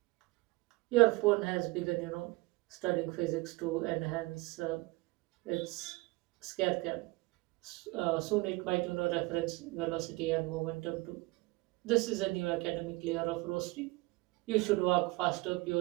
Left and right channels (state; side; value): quieter; left; 23.5 dB